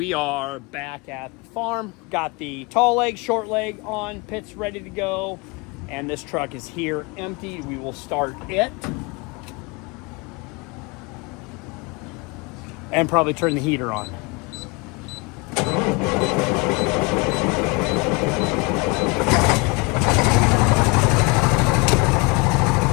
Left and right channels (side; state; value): right; quieter; 27.6 dB